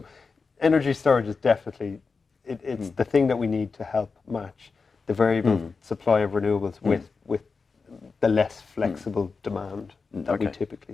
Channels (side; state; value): right; quieter; 4.7 dB